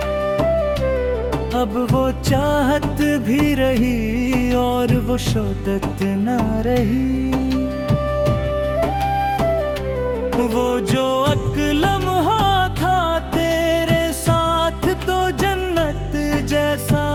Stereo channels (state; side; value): identical; both; correlation 1.00